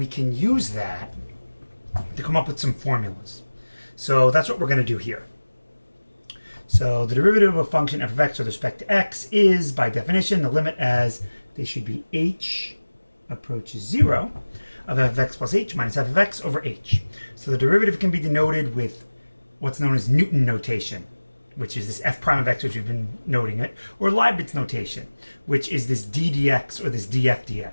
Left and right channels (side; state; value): both; inverted; correlation -1.00